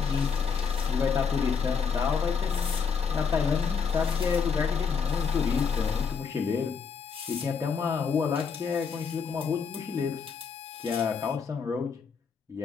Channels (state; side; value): quieter; right; 6.0 dB